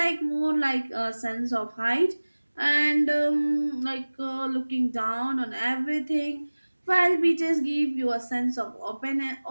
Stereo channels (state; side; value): inverted; both; correlation -1.00